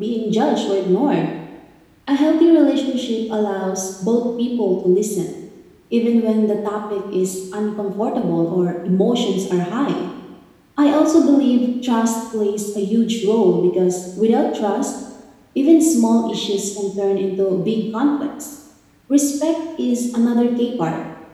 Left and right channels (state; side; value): identical; both; correlation 1.00